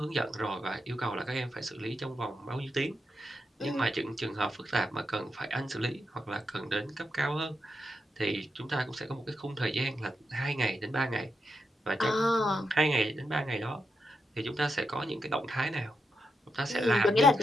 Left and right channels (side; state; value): both; normal; correlation 0.84